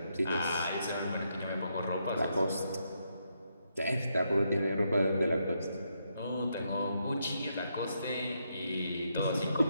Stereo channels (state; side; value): inverted; both; correlation -0.80